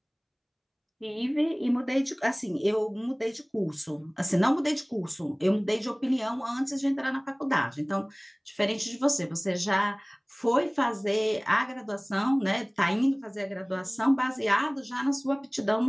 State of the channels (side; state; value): both; identical; correlation 1.00